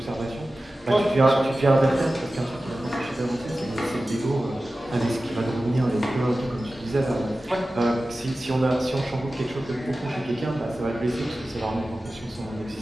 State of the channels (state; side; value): normal; both; correlation 0.95